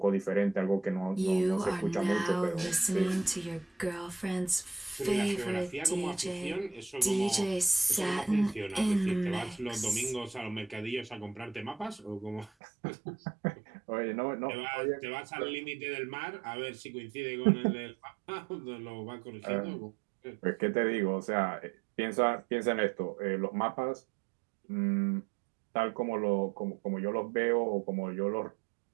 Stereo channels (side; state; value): left; drops out; at 12.5 s